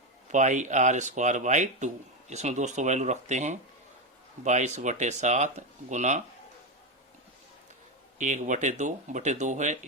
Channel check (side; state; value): both; normal; correlation 0.11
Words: पाई आर स्क्वायर बाई 2। इसमें दोस्तों वैल्यू रखते हैं 22/7 गुना 1/2 है